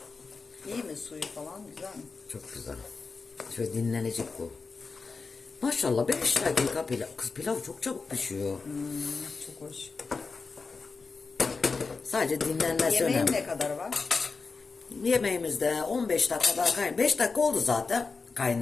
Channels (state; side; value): quieter; right; 4.5 dB